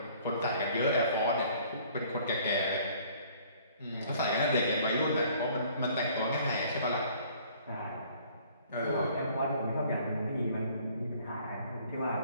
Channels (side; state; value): both; inverted; correlation -0.56